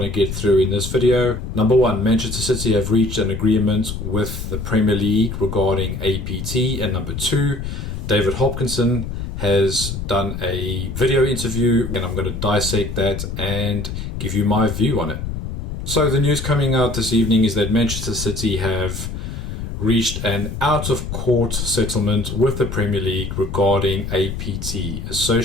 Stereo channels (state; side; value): noise; left; rumble, 6 dB below the sound